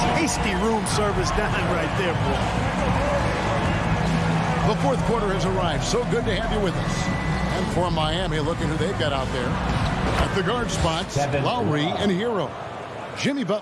Tasty room service dime right there, boy. The fourth quarter has arrived. So good to have you with us. And for Miami, look at who they've got out there. At the guard spots, Lowry and Hero. Jimmy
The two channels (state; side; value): identical; both; correlation 1.00